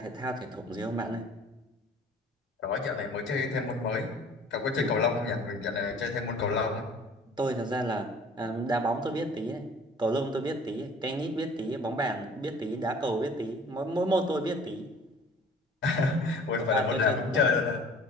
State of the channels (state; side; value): normal; both; correlation 0.49